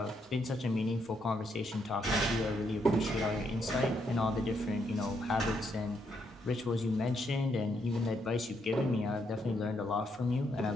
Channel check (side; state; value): both; normal; correlation 0.76